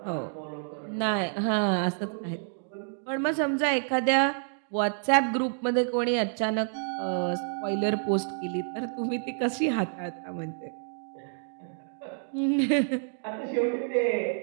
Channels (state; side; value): silent; left; digital silence